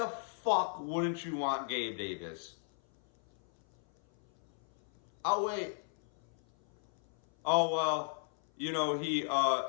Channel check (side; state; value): right; silent; 54 dB below the other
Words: fuck wouldn't you want Gabe Davis? Oh, wait. Oh, well, he